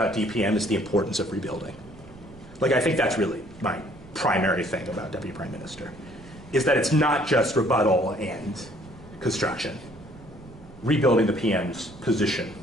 DPM is the importance of rebuilding. Like, I think that's really my primary thing about Deputy Prime Minister, is that it's not just rebuttal and construction. Rebuilding the PM's position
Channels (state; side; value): noise; right; rumble, 20 dB below the sound